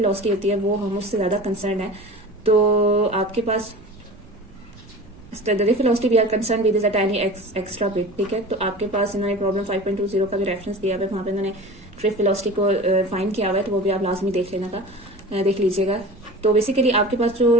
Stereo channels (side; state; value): right; noise; rumble, 23 dB below the sound